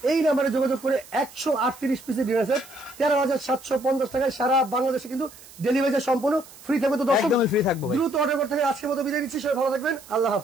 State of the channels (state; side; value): noise; right; hiss, 20 dB below the sound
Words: এই নাম্বারে যোগাযোগ করে 138 পিসের ডিনার সেট 13,750 টাকায় সারা বাংলাদেশে কিন্তু ডেলিভারি সম্পূর্ণ ফ্রি থাকবে। তো দর্শক একদমই ফ্রি থাকবে, দ্রুত অর্ডার করতে হবে। আজকের মতো বিদায় নিচ্ছি, সবাই ভালো থাকবেন, আল্লাহ